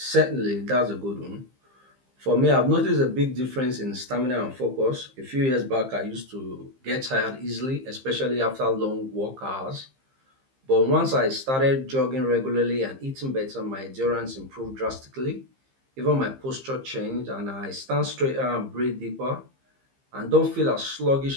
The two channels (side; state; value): left; late; 15 ms